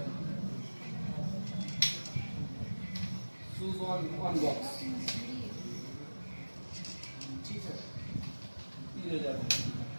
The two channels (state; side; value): inverted; both; correlation -1.00